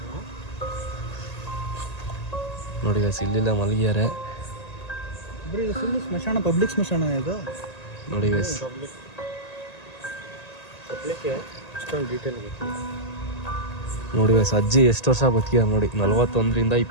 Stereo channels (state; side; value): late; right; 1.8 ms